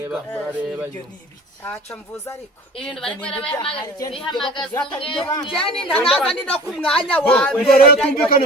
murareba aca mvuza ariko ibintu bari bihamagaza jani ndanaza ndi no ku mwanya wa mbere rero tumvikane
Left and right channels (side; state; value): both; normal; correlation 0.43